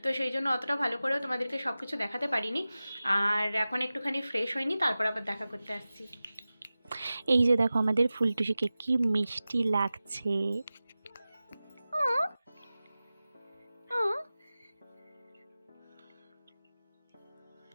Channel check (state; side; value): inverted; both; correlation -0.96